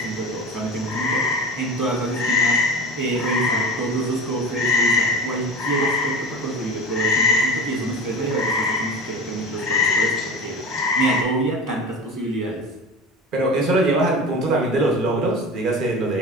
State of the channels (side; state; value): both; normal; correlation 0.31